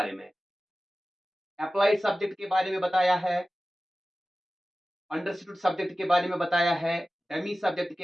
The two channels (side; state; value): both; normal; correlation 0.96